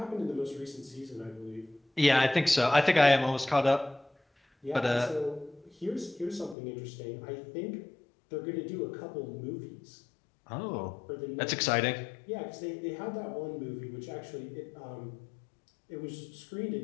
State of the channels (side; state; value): right; drops out; at 6.6 s